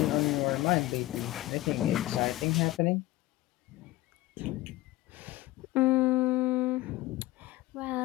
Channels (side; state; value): right; quieter; 17.7 dB